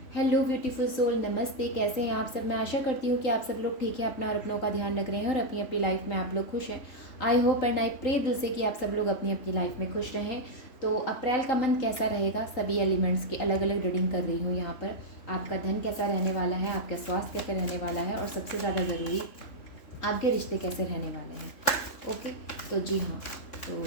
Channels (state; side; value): late; right; 3.8 ms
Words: Hello beautiful soul, नमस्ते। कैसे हैं आप सब? मैं आशा करती हूँ कि आप सब लोग ठीक हैं, अपना और अपनों का ध्यान रख रहे हैं और अपनी अपनी लाइफ में आप लोग खुश हैं। I hope and I pray दिल से कि आप सब लोग अपनी अपनी लाइफ में खुश रहें। तो अप्रैल का मंथ कैसा रहेगा, सभी एलिमेंट्स की अलग अलग रीडिंग कर रही हूँ यहाँ पर। आपका धन कैसा रहने वाला है, आपका स्वास्थ्य कैसे रहने वाला है, और सबसे ज़्यादा ज़रूरी आपके रिश्ते कैसे रहने वाले हैं। ओके, तो जी हाँ, तो